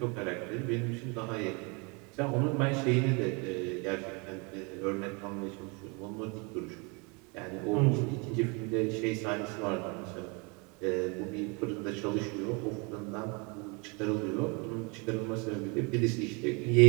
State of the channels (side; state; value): left; quieter; 31.3 dB